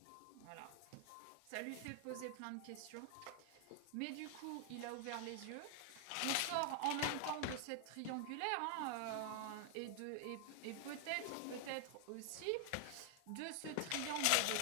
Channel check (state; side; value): different; both; correlation 0.00